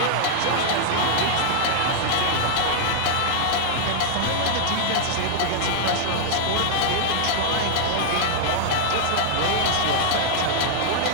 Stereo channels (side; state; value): both; different; correlation -0.01